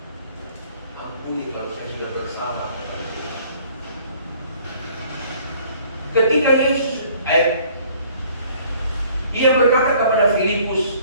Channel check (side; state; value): both; inverted; correlation -0.57